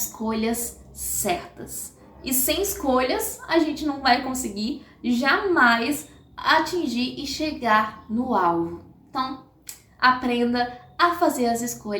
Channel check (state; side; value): identical; both; correlation 1.00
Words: certas. E sem escolhas, a gente não vai conseguir jamais atingir e chegar no alvo. Então, aprenda a fazer as